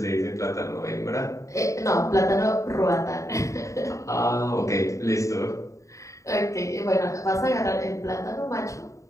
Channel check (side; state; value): right; late; 0.15 ms